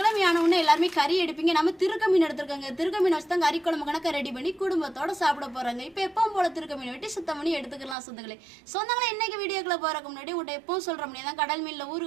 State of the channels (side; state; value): left; drops out; at 8.0 s